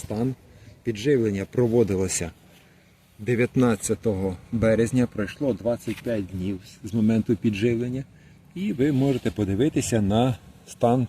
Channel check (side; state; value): both; identical; correlation 1.00